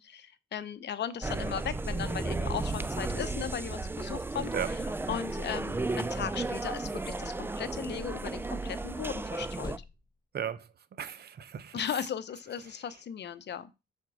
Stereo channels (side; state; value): both; normal; correlation 0.47